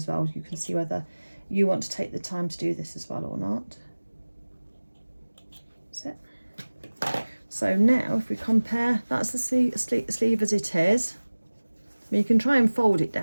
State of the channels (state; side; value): inverted; both; correlation -1.00